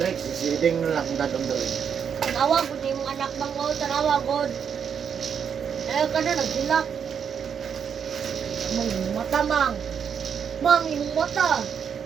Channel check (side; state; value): left; quieter; 7.4 dB